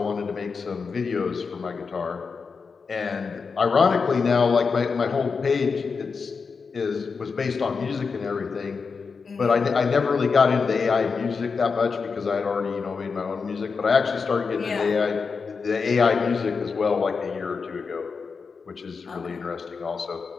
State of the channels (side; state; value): right; quieter; 5.1 dB